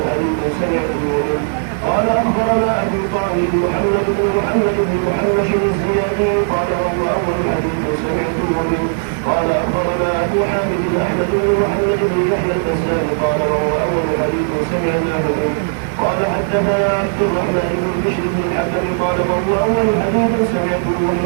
حديث سمعته منه. قال أخبرنا أبو طاهر محمد بن محمد الزيادي قال وهو أول حديث سمعته منه. قال أخبرنا أبو حامد أحمد بن محمد بن يحيى البزار قال وهو أول حديث سمعناه منه. قال حدثنا عبد الرحمن بن بشر بن الحكم قال وهو أول حديث سمعته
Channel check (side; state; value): left; silent; 68 dB below the other